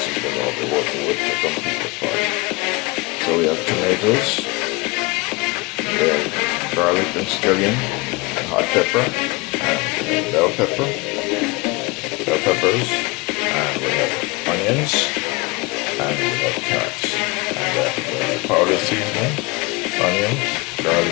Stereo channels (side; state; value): right; quieter; 25.0 dB